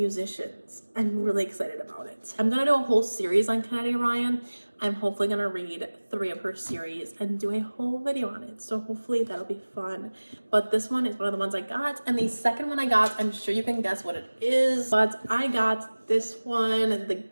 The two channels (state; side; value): inverted; both; correlation -1.00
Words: I'm really excited about it. I'm gonna do a whole series on Kennedy Ryan. I'm hopefully gonna read 3 of her series and do a whole video on it. So hopefully that'll be fun. But this one is one of the ones I got. And the second one I got, I'm sure you can guess what it is. But I got this one, the